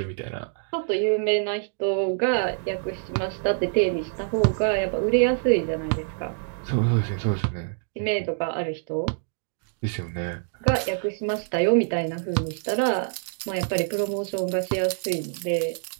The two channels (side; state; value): left; silent; digital silence